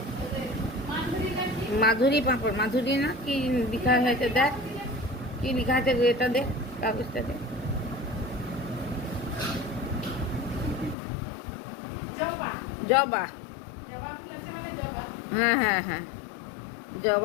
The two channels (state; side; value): drops out; right; at 11.0 s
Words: মাধুরী পাঁপড়, মাধুরী না কি লেখা হয়েছে, দেখ কি লেখা আছে, এটা দেখ কাগজটা দেখ। জবা, হ্যাঁ হ্যাঁ হ্যাঁ,